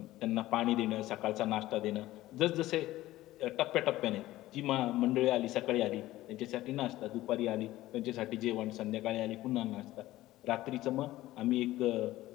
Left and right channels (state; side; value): quieter; right; 16.2 dB